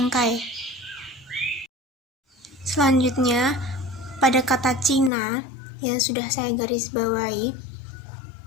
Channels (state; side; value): drops out; right; at 5.1 s